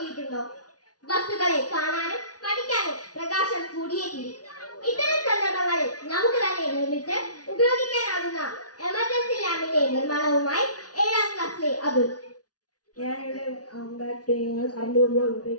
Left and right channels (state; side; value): late; right; 0.68 ms